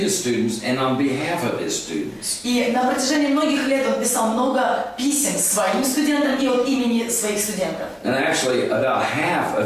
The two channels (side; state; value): both; identical; correlation 1.00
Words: students and on behalf of his students. И на протяжении многих лет он писал много писем своим студентам и от имени своих студентов. And actually, about half